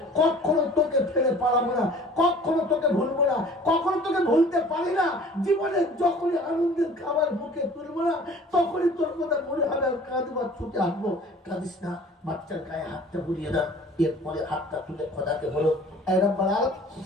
কখনো তোকে ফেলে পালাবো না, কখনো তোকে ভুলবো না, কখনো তোকে ভুলতে পারি না। জীবনে যখনই আনন্দের খাবার মুখে তুলবো না, তখনই তোর কথা মনে হবে, আর কাঁদবার ছুটে আসবো। কাঁদিস না, বাচ্চার গায়ে হাতটা বুলিয়ে দেন। এরপরে হাতটা তুলে খোদাকে বলো, এই রব্বুল আলামিন,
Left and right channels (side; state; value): both; normal; correlation 0.48